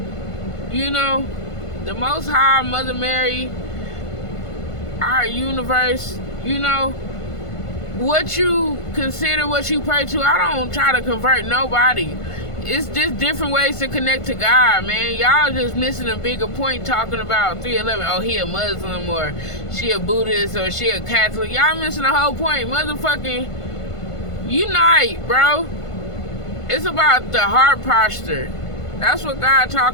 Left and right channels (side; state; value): right; late; 1.5 ms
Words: You know, the Most High, Mother Mary, our universe, you know, what you consider, what you pray to, I don't try to convert nobody. It's just different ways to connect to God, man. Y'all just missing a bigger point talking about 311. Oh, he a Muslim, or she a Buddhist, or she a Catholic. Y'all missing the whole point. Motherfucking unite, bro. It's about the heart posture. That's what God